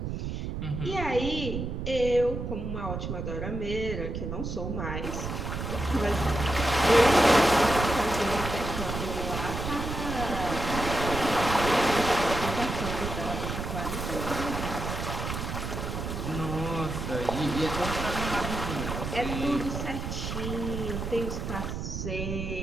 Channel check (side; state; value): right; noise; rumble, 4 dB below the sound